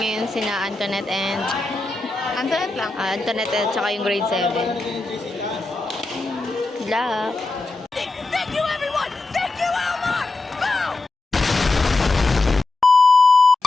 sina Antoinette and Antoinette lang. Antoinette at saka yung grade 7. Good luck! Thank you, everyone! Thank you, Elmar!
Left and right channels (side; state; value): right; quieter; 3.2 dB